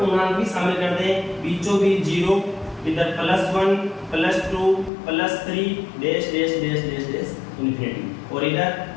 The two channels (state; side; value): drops out; right; at 4.9 s